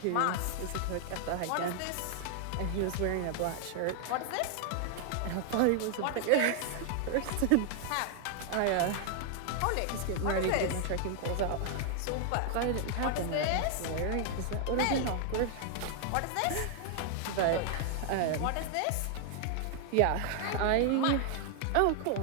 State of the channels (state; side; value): different; both; correlation 0.00